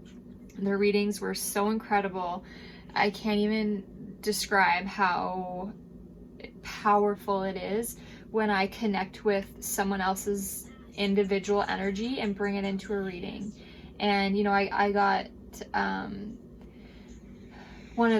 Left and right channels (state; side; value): identical; both; correlation 1.00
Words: their readings were so incredible. I can't even describe how powerful it is when I connect with someone else's individual energy and bring it into a reading. And you know, I got one